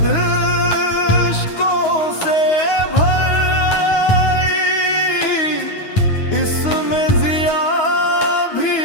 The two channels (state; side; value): late; right; 9.4 ms